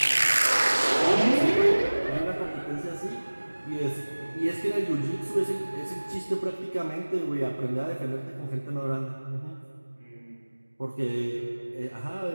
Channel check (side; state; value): both; inverted; correlation -1.00